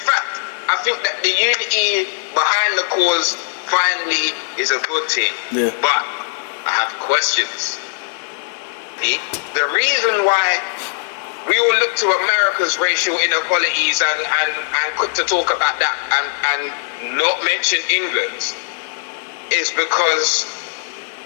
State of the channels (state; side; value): silent; right; digital silence